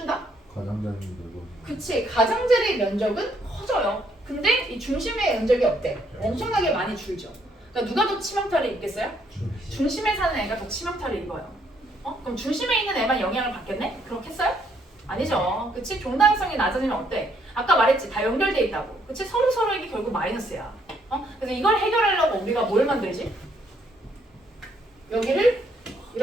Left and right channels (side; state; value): both; normal; correlation 0.70